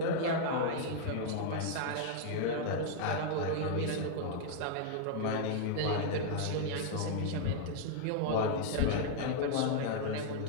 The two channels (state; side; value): different; both; correlation 0.00